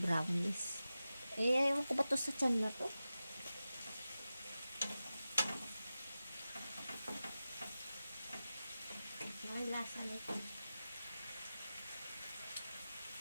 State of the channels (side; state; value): both; inverted; correlation -0.94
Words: Eh, ayaw ko ba to sa tiyan na to? Ang lasa nito.